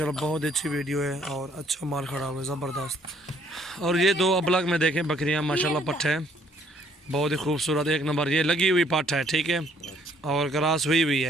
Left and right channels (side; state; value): both; normal; correlation 0.64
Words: बहुत अच्छी वीडियो है और अच्छा माल खड़ा हुआ है ज़बरदस्त। और ये 2 अबलग में देखें बकरियाँ माशाल्लाह, पट्ठ है, बहुत ही खूबसूरत एक नंबर। ये लगी हुई पाठ है, ठीक है, और क्रॉस हुई